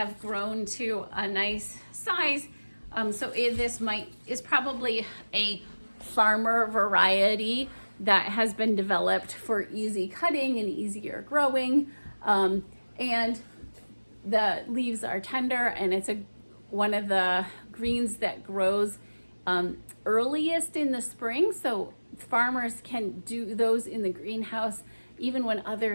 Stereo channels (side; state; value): both; inverted; correlation -1.00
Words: grown to a nice size. So this is probably a farmer variety that has been developed for easy cutting and easier growing. And the leaves are tender, and it's one of the greens that grows earliest in the spring. So farmers can do those in the greenhouse even when other